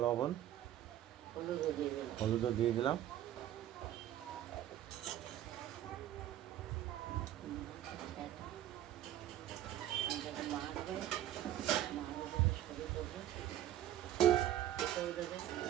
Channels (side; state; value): left; quieter; 12.2 dB